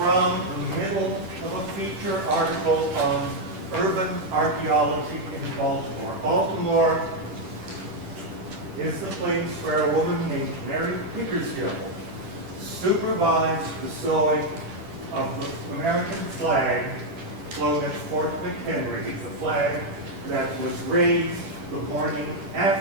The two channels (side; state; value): left; late; 10 ms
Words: the middle of a feature article on urban archaeology in Baltimore. Baltimore is the place where a woman named Mary Pickersgill supervised the sewing of the American flag flown at Fort McHenry, the flag that was raised the morning